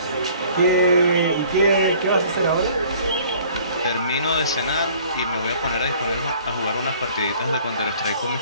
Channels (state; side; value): inverted; both; correlation -0.53